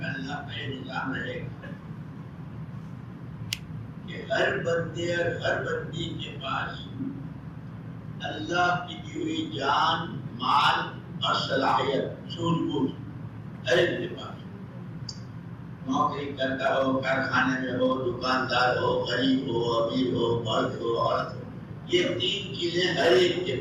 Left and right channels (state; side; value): identical; both; correlation 1.00